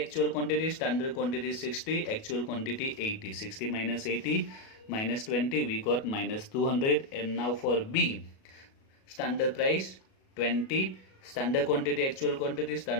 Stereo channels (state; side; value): late; right; 37 ms